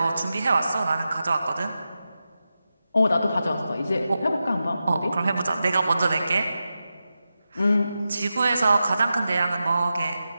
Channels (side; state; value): both; inverted; correlation -0.91